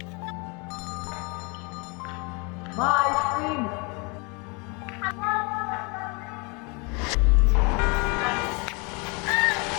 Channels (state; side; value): quieter; right; 31.0 dB